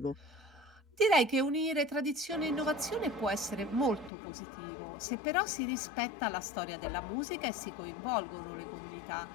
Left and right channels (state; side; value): drops out; right; at 4.1 s